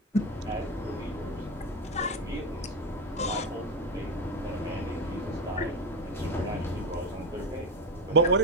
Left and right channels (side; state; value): both; normal; correlation 0.16